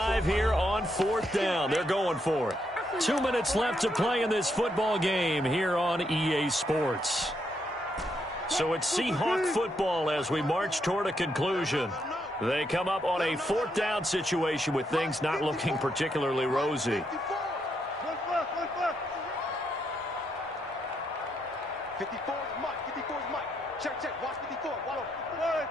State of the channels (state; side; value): normal; both; correlation 0.78